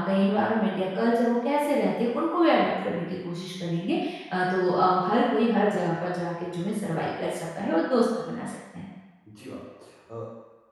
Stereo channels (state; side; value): identical; both; correlation 1.00